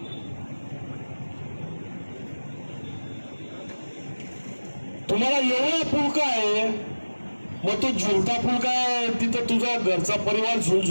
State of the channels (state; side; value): inverted; both; correlation -1.00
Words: तुम्हाला एवढा फुलका आहे, मग तो झुलता फुलका आहे, तिथं तुझा घरचा परिवार